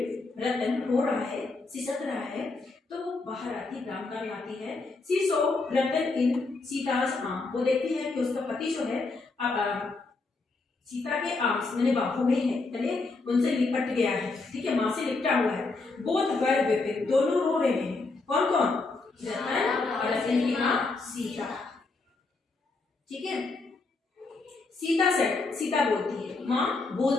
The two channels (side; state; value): right; quieter; 3.7 dB